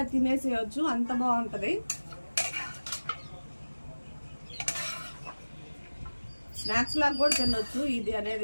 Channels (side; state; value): both; inverted; correlation -1.00